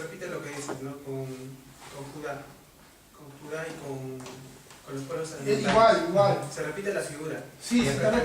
lo que dices, ¿no? Con Judá. Con Judá y con los pueblos alimentarios. Igual. Se repite la figura. Sí, se está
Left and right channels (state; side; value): identical; both; correlation 1.00